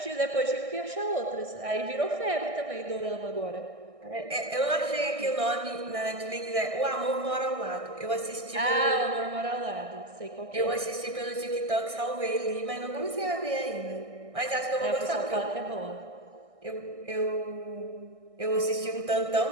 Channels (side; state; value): left; late; 1.6 ms